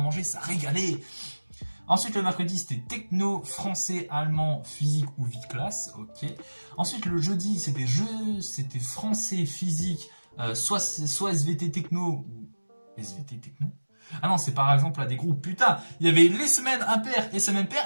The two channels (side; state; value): both; inverted; correlation -1.00